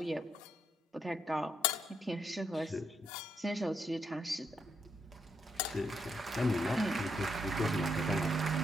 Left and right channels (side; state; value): both; normal; correlation 0.78